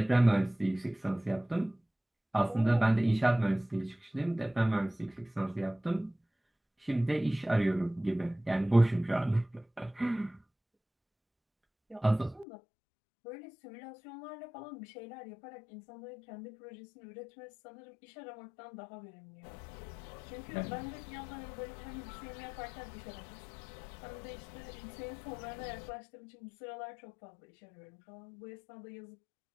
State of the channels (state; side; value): drops out; right; at 12.5 s